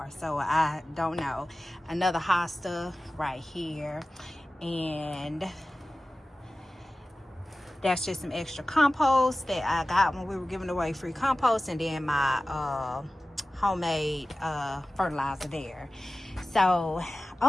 so I don't know. Another hosta right here, and that's just some extra compost that I got when we were giving away free compost, and then my homemade fertilizer there. So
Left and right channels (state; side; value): normal; both; correlation 0.96